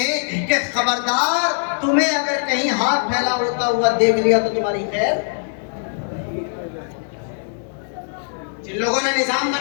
کہ خبردار، تمہیں اگر کہیں ہاتھ پھیلا ہوتا ہوا دیکھ لیا تو تمہاری خیر۔ جن لوگوں نے نظام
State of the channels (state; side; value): silent; right; digital silence